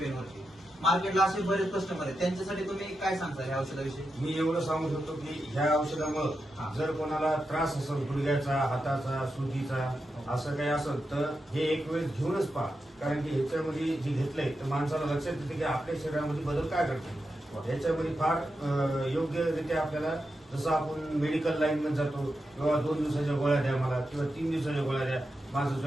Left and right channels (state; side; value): normal; both; correlation 0.88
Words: वरती. मार्केटला असे बरेच कस्टमर आहेत, त्यांच्यासाठी तुम्ही काय सांगता ह्या औषधाविषयी? मी एवढं सांगू शकतो की ह्या औषधामुळे जर कोणाला त्रास असेल गुडघ्याचा, हाताचा, सुजीचा असं काही असेल तर हे एक वेळेस घेऊनच पहा. कारण की ह्याच्यामध्ये जे घेतलंय तर माणसाला लक्षात येते की आपल्या शरीरामध्ये बदल काय करतो. ह्याच्यामध्ये फार योग्यरित्या आपल्याला जसं आपण मेडिकल लाईन मध्ये जातो किंवा 2 दिवसाच्या गोळ्या द्या मला किंवा 3 दिवसाच्या गोळ्या द्या, माझं